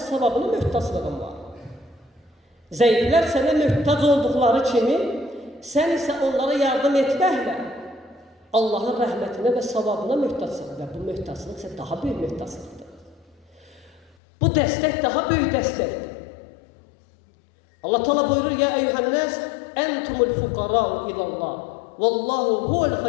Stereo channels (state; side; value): drops out; right; at 14.2 s